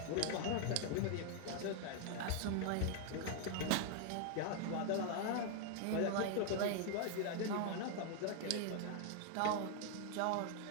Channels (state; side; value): different; both; correlation 0.00